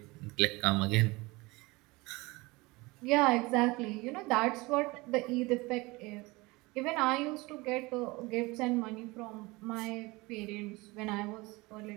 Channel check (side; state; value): left; quieter; 23.2 dB